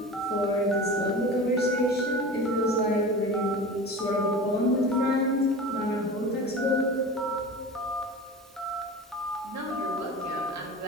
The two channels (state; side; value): normal; both; correlation 0.33